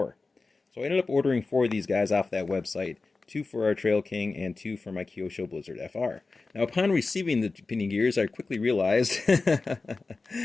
So I ended up ordering 4 of these guys off that website, 2 for our Trail King and 2 for my Kyosho Blizzard FR. Now upon receiving the pinion gears, I quickly realized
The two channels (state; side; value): quieter; right; 3.9 dB